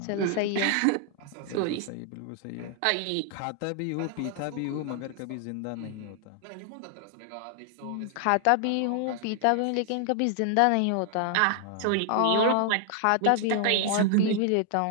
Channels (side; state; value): both; different; correlation 0.00